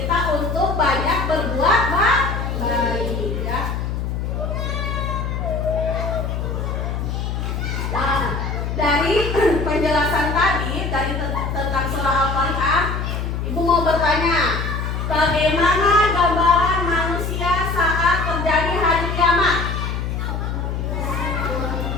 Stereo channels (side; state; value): left; noise; hum, 2 dB below the sound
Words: untuk banyak berbuat baik, ya. Nah, dari penjelasan tadi tentang surah Al-Qari'ah, Ibu mau bertanya, bagaimana gambaran manusia saat terjadi hari kiamat?